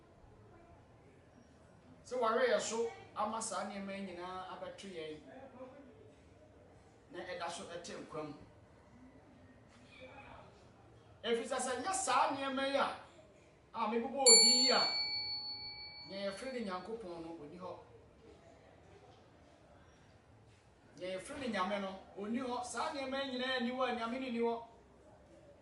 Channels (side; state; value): both; identical; correlation 1.00